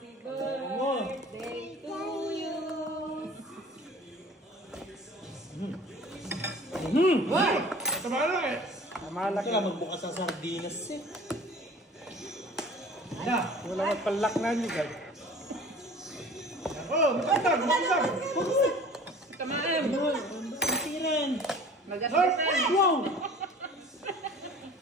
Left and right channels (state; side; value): normal; both; correlation 0.45